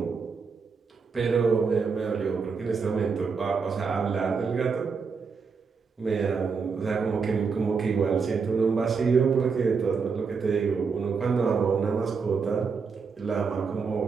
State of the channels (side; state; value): left; quieter; 5.3 dB